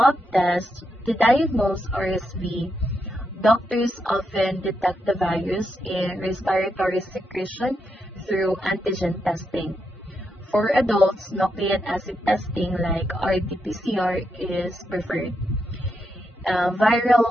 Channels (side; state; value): both; normal; correlation 0.83